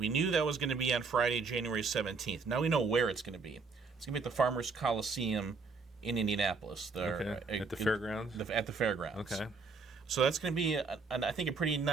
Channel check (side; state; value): left; quieter; 4.5 dB